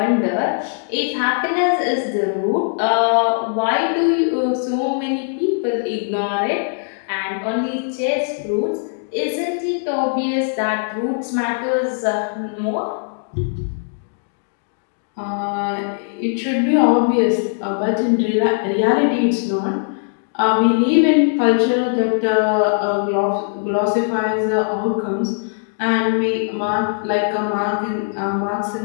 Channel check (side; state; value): right; silent; digital silence